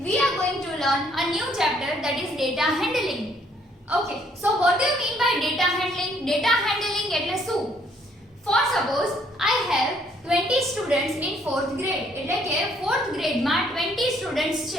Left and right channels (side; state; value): both; normal; correlation 0.66